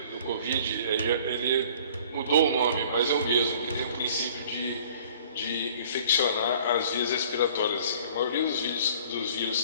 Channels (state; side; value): inverted; both; correlation -0.52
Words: do Covid, ele mudou o nome, mas é o mesmo, que tem o princípio de infeccionar as vias respiratórias. Assim. A maioria dos vírus